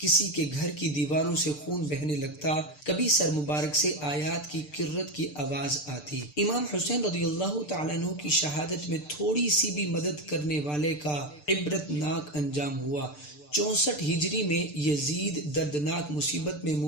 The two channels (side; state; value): right; late; 6.8 ms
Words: کے گھر کی دیواروں سے خون بہنے لگتا، کبھی سر مبارک سے آیات کی کرت کی آواز آتی۔ امام حسین رضی اللہ تعالیٰ عنہ کی شہادت میں تھوڑی سی بھی مدد کرنے والے کا عبرتناک انجام ہوا۔ 64 ہجری میں یزید دردناک مصیبت میں